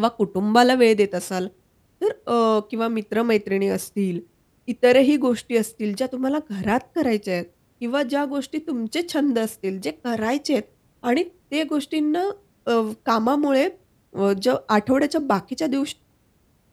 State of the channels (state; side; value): identical; both; correlation 1.00